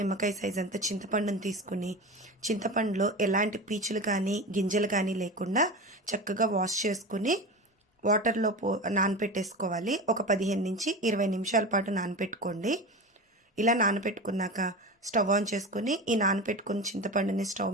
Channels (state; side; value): normal; both; correlation 0.27